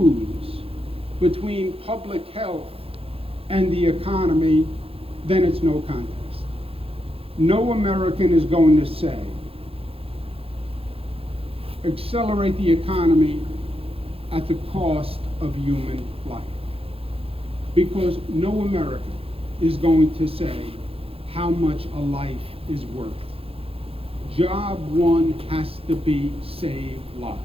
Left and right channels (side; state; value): left; late; 0.27 ms